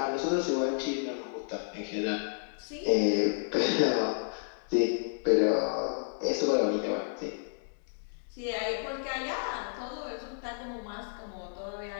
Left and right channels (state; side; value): silent; right; 57 dB below the other